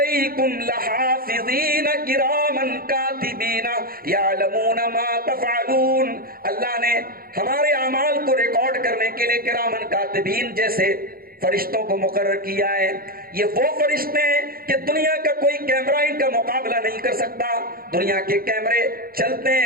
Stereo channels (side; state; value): left; late; 0.43 ms